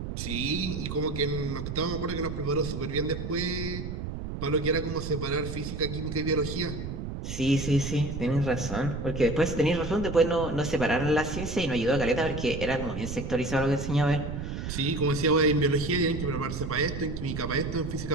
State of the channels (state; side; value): noise; right; rumble, 6 dB below the sound